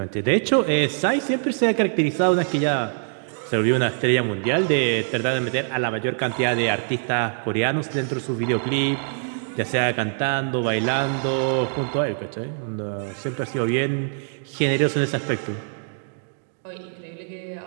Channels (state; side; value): silent; left; 63 dB below the other